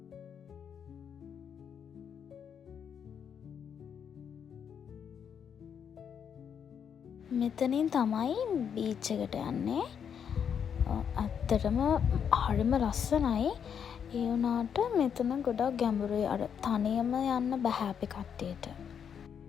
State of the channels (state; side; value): quieter; right; 7.7 dB